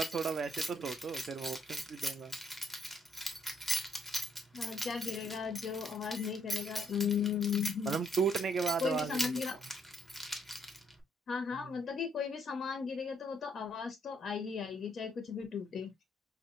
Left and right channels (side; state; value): both; normal; correlation 0.68